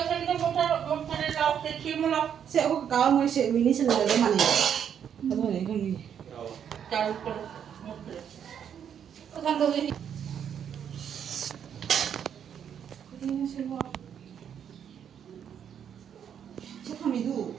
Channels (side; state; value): left; quieter; 8.5 dB